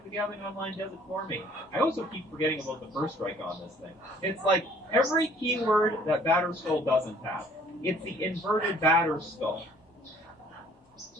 the Gathering Online does it for me. I also keep forgetting about the first strike on this thing. It's like every keyword that Batterskull doesn't have. It's the inverted Batterskull.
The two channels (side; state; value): both; normal; correlation 0.57